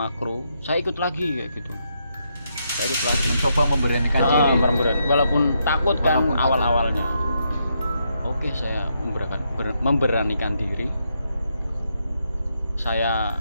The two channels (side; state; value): both; inverted; correlation -0.79